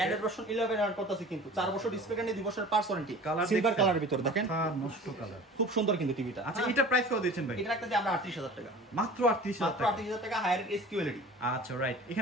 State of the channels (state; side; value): normal; both; correlation 0.41